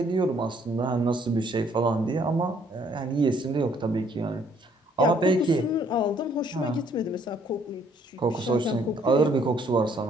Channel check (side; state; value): both; normal; correlation 0.64